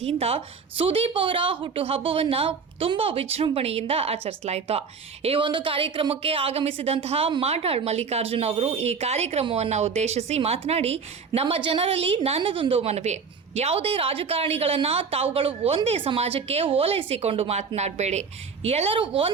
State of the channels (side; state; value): left; quieter; 5.5 dB